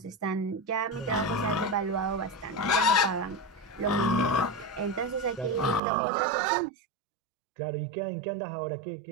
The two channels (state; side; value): drops out; left; at 5.8 s